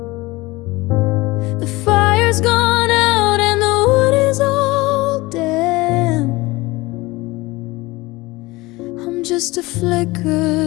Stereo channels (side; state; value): right; quieter; 21.5 dB